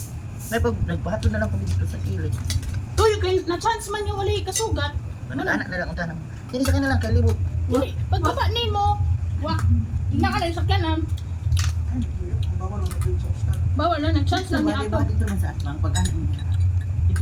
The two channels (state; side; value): identical; both; correlation 1.00